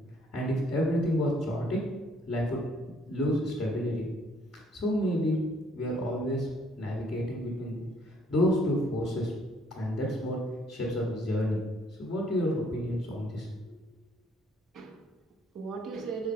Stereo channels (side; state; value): both; normal; correlation 0.65